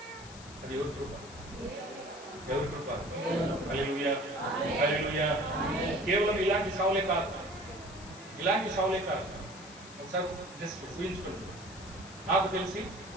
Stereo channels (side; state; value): left; noise; hiss, 17 dB below the sound